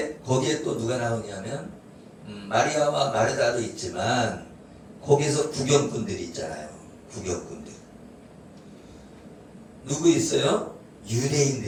거기에 또 누가 나오냐면 마리아와 마르다도 있지만 거기서 구경꾼들이 있잖아요. 구경꾼들. 누구 있어요?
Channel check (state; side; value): identical; both; correlation 1.00